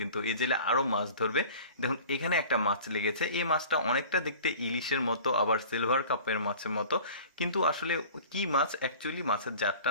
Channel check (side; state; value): both; inverted; correlation -0.43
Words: এই জেলে আরো মাছ ধরবে। দেখুন এখানে একটা মাছ লেগেছে। এই মাছটা অনেকটা দেখতে ইলিশের মতো, আবার সিলভার কাপের মাছের মতো, কিন্তু আসলে কি মাছ অ্যাকচুয়ালি, মাছের